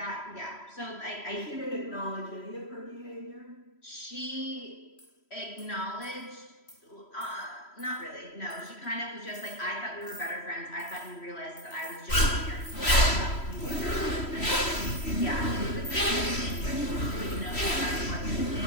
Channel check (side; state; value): right; late; 3.1 ms